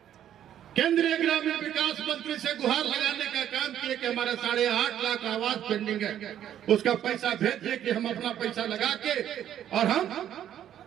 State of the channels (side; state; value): left; quieter; 10.7 dB